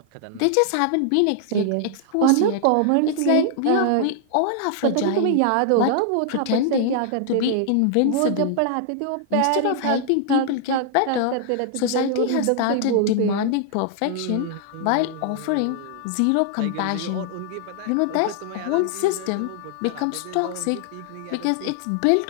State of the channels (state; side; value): different; both; correlation -0.01